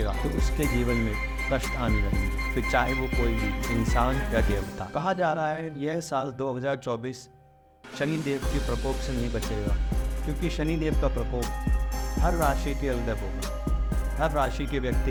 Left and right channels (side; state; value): both; identical; correlation 1.00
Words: तो उसके जीवन में कष्ट आने लगेंगे, फिर चाहे वो कोई भी इंसान या देवता। कहा जा रहा है यह साल 2024 शनिदेव के प्रकोप से नहीं बचेगा, क्योंकि शनिदेव का प्रकोप हर राशि के अंदर होगा। हर राशि के